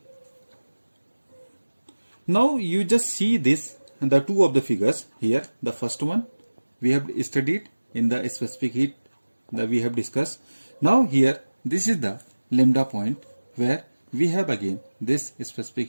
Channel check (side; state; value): both; inverted; correlation -1.00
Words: Now you just see this and the two of the figures here. The first one we have studied in the specific heat that we have discussed. Now here this is the lambda point where we have again this